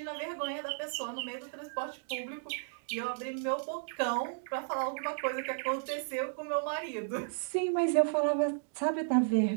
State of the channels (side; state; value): left; silent; digital silence